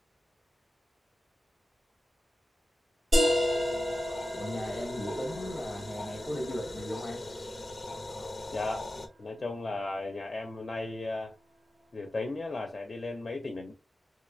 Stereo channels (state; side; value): normal; both; correlation 0.93